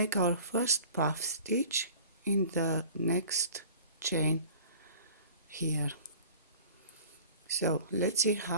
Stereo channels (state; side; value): inverted; both; correlation -0.43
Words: our first puff stitch in the next chain here. So let's see